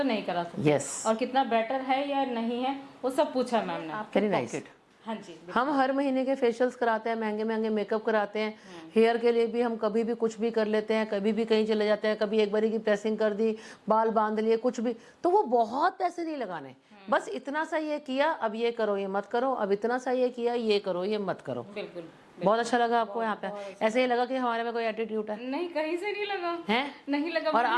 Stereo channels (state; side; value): identical; both; correlation 1.00